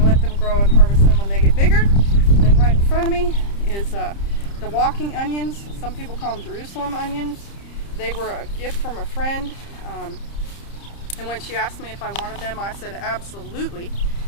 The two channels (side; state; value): right; late; 30 ms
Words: let them grow and harvest them when they get bigger. And then right in front of me is the walking onions. Some people call them Jerusalem onions. They were a gift from a friend. And when she asked me if I wanted them, I said absolutely.